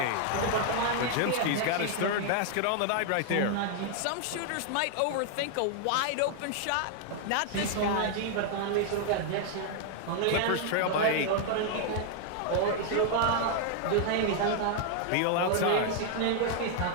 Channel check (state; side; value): different; both; correlation 0.00